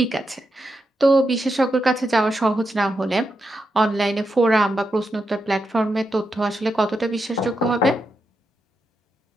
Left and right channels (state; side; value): normal; both; correlation 0.85